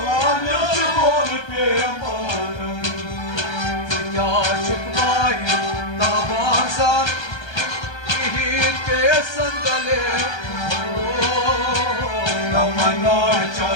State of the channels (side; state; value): right; late; 1.3 ms